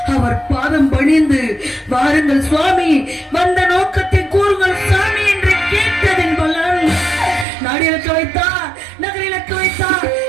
அவர் பாதம் பணிந்து, வாருங்கள் சுவாமி, வந்த நோக்கத்தை கூறுங்கள் சாமி என்று கேட்டதன் பலன் நாடிலக்க வைத்தார், நகரிலக்க வைத்தார்,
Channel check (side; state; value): left; drops out; at 7.5 s